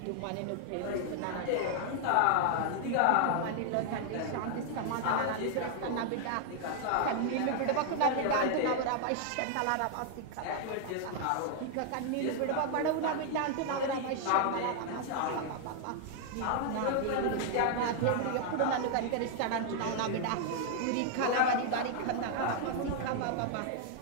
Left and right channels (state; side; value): different; both; correlation 0.00